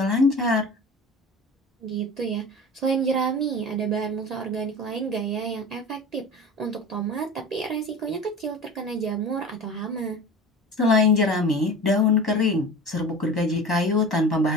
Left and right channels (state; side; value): normal; both; correlation 0.35